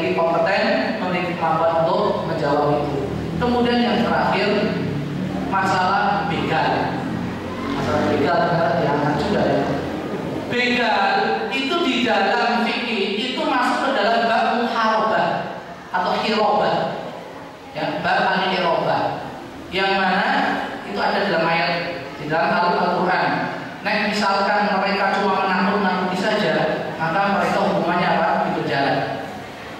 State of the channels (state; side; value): identical; both; correlation 1.00